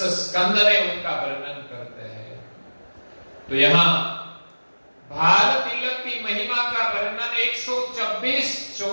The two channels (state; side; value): inverted; both; correlation -1.00